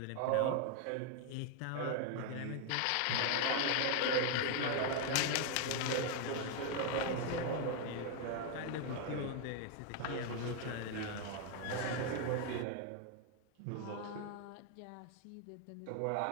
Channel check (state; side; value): different; both; correlation 0.00